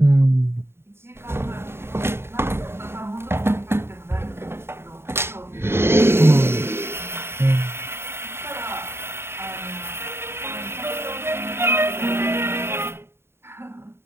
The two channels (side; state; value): left; late; 0.12 ms